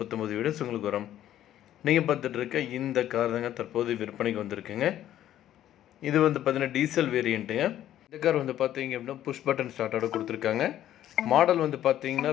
வீடியோஸ் உங்களுக்கு வரும். நீங்கள் பார்த்துட்டு இருக்க இந்த கார் தாங்க தற்போது விற்பனைக்கு வந்திருக்குங்க. இது வந்து பார்த்தீங்கன்னா டீசல் வேரியண்ட்டுங்க. இந்த கார் வந்து பார்த்தீங்க அப்படின்னா புஷ் பட்டன் ஸ்டார்ட்டோட கொடுத்துருக்காங்க. மாடல் வந்து பார்த்தீங்கன்னா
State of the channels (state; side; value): quieter; right; 12.1 dB